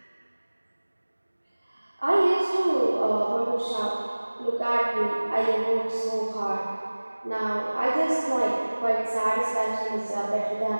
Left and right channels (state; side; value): inverted; both; correlation -1.00